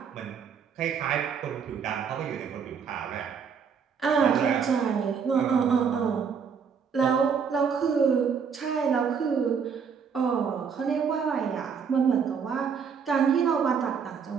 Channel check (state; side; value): quieter; left; 6.5 dB